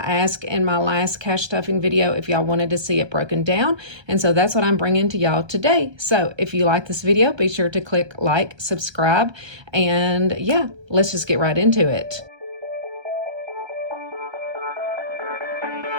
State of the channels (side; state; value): left; late; 1.3 ms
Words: in my last cash stuffing video if y'all wanted to see it broken down, and so that's what I'm bringing to y'all today. So if you like this video, be sure to click like, subscribe, and yeah, let's just get right into it.